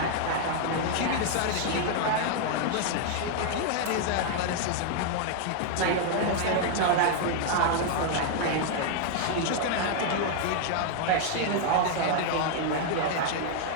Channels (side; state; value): both; different; correlation 0.00